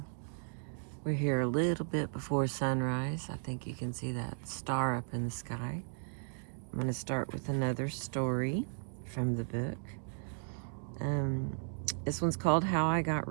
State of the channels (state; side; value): silent; left; digital silence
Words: We're here a little bit before sunrise. I think you can see that star up in the sky. I'm going to start with another story from the book. This one's called How I Got